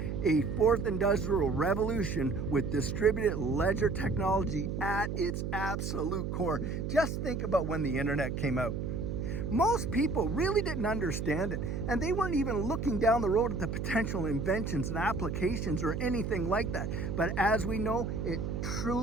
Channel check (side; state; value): right; noise; hum, 3 dB below the sound